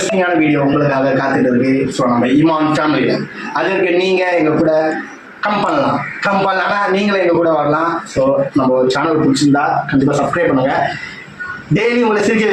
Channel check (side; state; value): both; identical; correlation 1.00